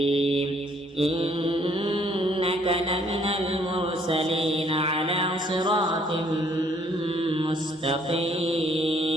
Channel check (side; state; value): both; normal; correlation 0.64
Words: إنك لمن المرسلين على صراط